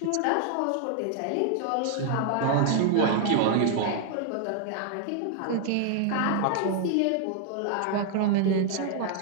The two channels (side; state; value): both; different; correlation 0.00